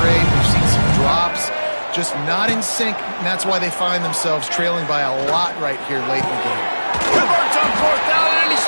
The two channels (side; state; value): both; inverted; correlation -1.00